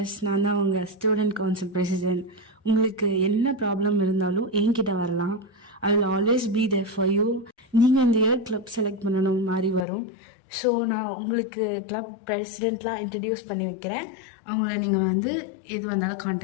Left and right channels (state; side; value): drops out; right; at 9.9 s